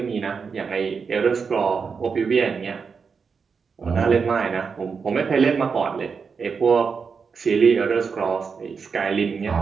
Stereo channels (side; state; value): left; quieter; 5.6 dB